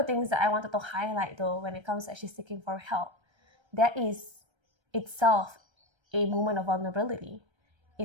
things that I wanted to highlight, though, when it comes to actually seeking for help, that is itself a moment of vulnerability.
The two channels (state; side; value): late; left; 1.3 ms